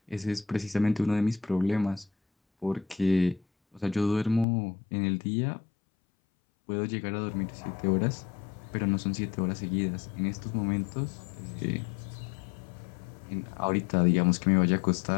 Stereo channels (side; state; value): right; drops out; at 4.5 s